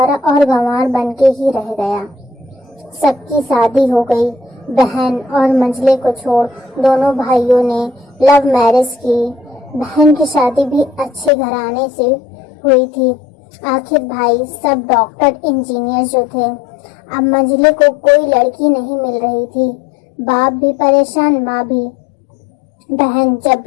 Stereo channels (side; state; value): right; drops out; at 11.3 s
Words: और गंवार बन के ही रह गया। सबकी शादी हो गई। बहन और मंझले को छोड़ दोनों भाइयों ने लव मैरिज की। बहन की शादी भी अच्छे घराने से हुई थी। आखिर भाई सब डॉक्टर इंजीनियर जो थे। अब मंझले को कोई लड़की नहीं मिल रही थी। बाप भी परेशान, माँ भी। बहन जब